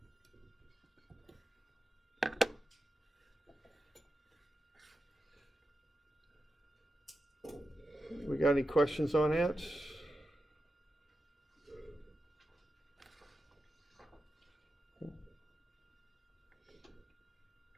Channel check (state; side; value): normal; both; correlation 0.90